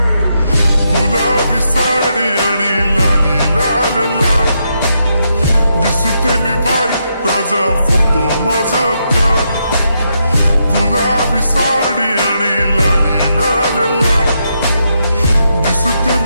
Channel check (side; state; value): both; inverted; correlation -0.81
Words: गुलाबी साडी आणि लाली लाल लाल, दिसते मी भारी राजा फोटो माझा काढ. गुलाबी साडी आणि लाली लाल लाल, दिसते